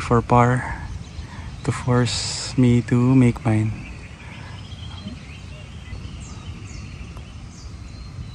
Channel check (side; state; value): both; identical; correlation 1.00